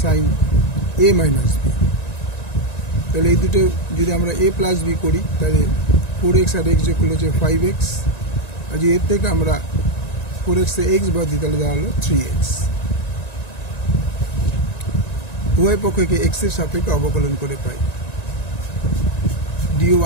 sin a minus b. তাহলে এই দুটো যদি আমরা a plus b করি তাহলে 4x আর x যোগ করলে হচ্ছে 5x, আর যদি এর থেকে আমরা 4x এ x বাদ দিই তাহলে দাঁড়ালো 3x. উভয় পক্ষকে x এর সাপেক্ষে অবকলন করে পাই dy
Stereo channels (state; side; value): late; right; 1.9 ms